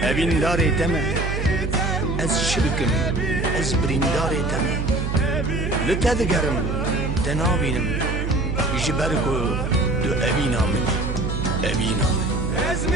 evîndarê te me. Ez çi bikim, ez birîndarê te me. Li te digerim, te nabînim, ji ber ku tu evîna min, evîna min.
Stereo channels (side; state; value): right; noise; hum, 2 dB below the sound